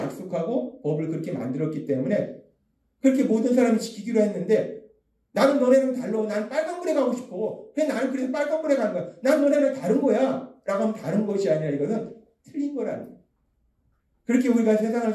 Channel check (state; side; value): identical; both; correlation 1.00